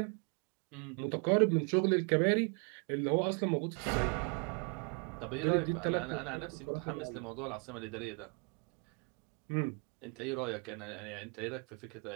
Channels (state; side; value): quieter; left; 36.5 dB